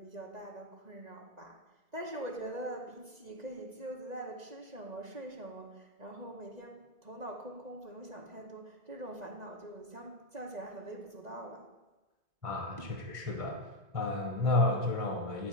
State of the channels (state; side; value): late; left; 1.9 ms